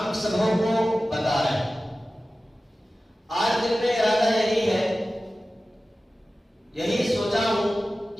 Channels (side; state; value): both; normal; correlation 0.95